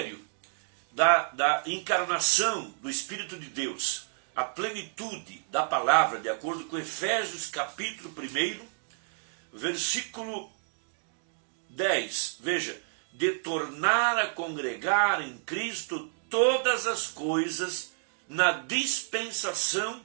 da encarnação do Espírito de Deus, a plenitude da palavra, de acordo com Efésios capítulo 1, versículo 10, veja, de tornar a congregar em Cristo todas as coisas na dispensação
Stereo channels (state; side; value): silent; left; digital silence